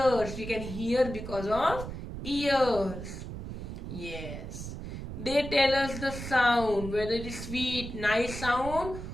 We can hear because of ears. Yes. They tell us the sound, whether it is sweet, nice sound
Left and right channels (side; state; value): right; noise; rumble, 8 dB below the sound